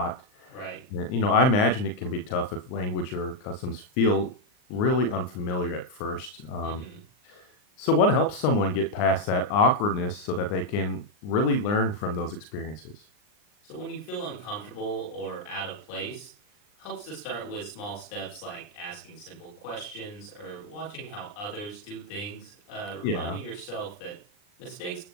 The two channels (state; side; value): late; right; 39 ms